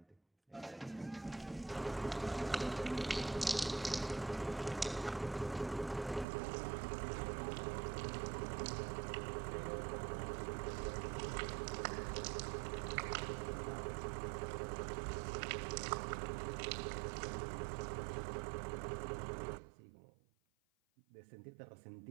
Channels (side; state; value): left; drops out; at 6.2 s